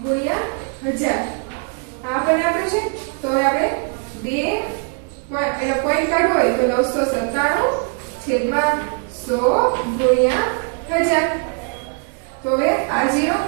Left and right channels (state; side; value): quieter; left; 38.3 dB